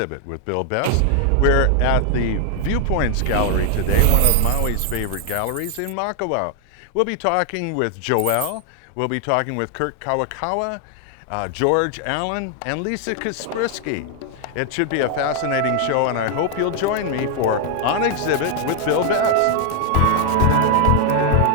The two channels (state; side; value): different; both; correlation 0.00